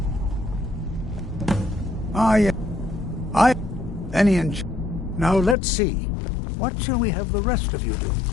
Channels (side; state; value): right; drops out; at 5.6 s